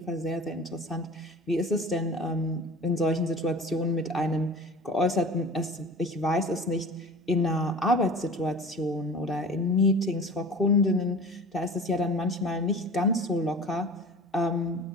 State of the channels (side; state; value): both; normal; correlation 0.39